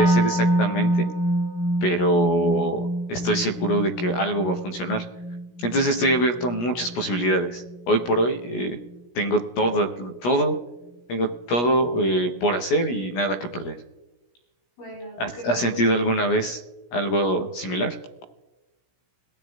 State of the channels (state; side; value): late; right; 17 ms